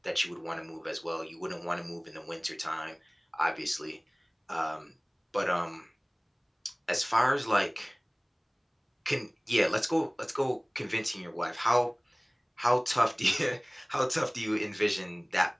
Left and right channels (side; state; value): both; identical; correlation 1.00